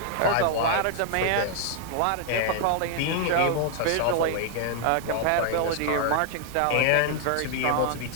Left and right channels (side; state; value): both; different; correlation 0.00